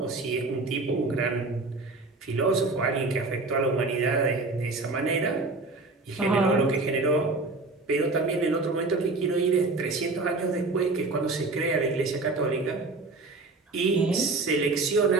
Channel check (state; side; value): quieter; left; 3.4 dB